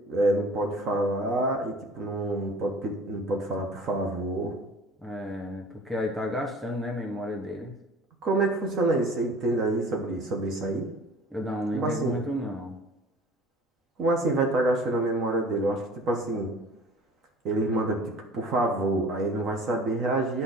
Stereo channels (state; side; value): normal; both; correlation 0.46